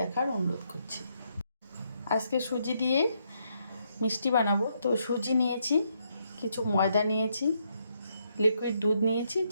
অনুরোধ করছি। আজকে সুজি দিয়ে মিষ্টি বানাবো। তো সুজি নিয়েছি, কিছু ময়দা নিয়েছি, লিকুইড দুধ নিয়েছি,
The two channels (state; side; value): inverted; both; correlation -0.76